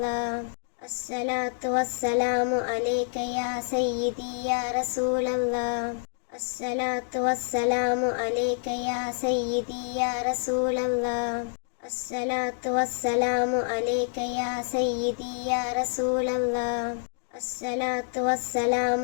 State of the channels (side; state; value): right; silent; digital silence